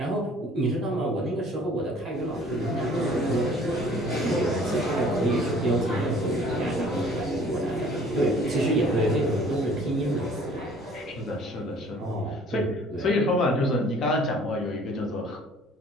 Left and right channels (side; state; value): both; normal; correlation 0.53